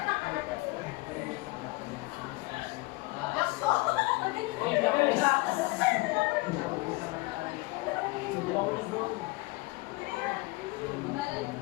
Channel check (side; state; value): right; quieter; 23.5 dB